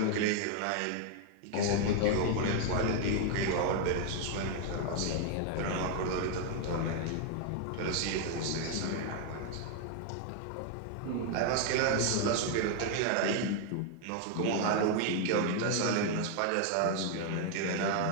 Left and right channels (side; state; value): both; different; correlation 0.00